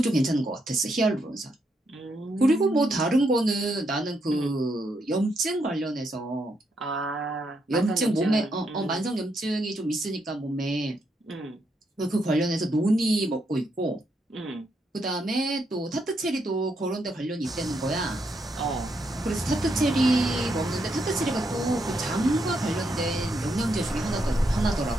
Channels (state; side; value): normal; both; correlation 0.79